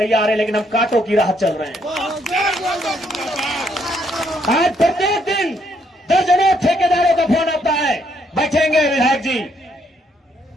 है, लेकिन हम कांटों की राह चल रहे हैं। आज प्रत्येक दिन दर्जनों ठेकेदारों का फोन आता है, बैठेंगे विधायक जी,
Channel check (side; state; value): both; normal; correlation 0.72